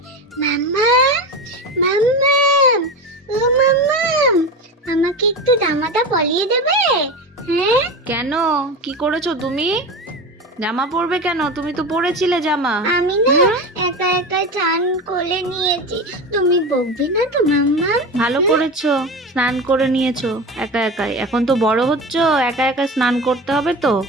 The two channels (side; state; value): both; normal; correlation 0.25